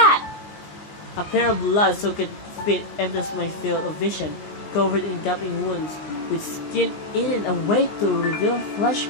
A pair of blood-soaked feet enters my field of vision, covered in gaping wounds, with skin eaten away to reveal flesh,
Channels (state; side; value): late; right; 20 ms